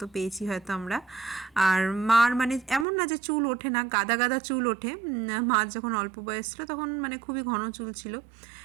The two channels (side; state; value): left; drops out; at 2.9 s